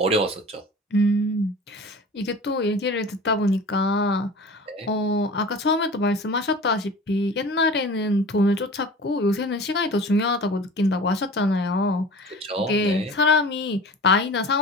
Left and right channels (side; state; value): both; normal; correlation 0.38